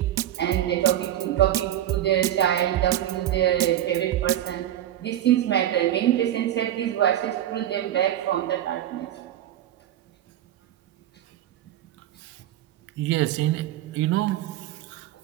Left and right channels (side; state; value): left; quieter; 12.2 dB